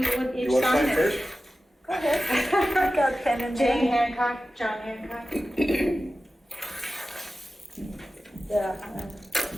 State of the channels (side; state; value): both; normal; correlation 0.94